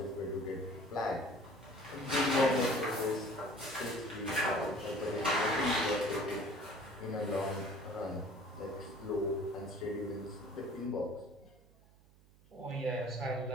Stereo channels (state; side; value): noise; right; hum, 27 dB below the sound